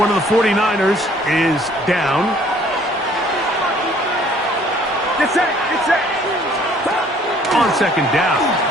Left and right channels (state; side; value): normal; both; correlation 0.58